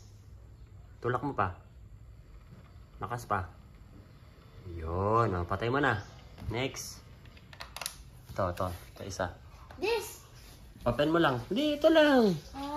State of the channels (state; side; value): identical; both; correlation 1.00